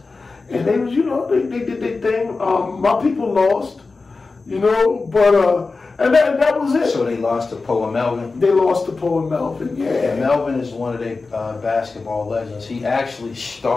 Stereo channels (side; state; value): right; quieter; 4.0 dB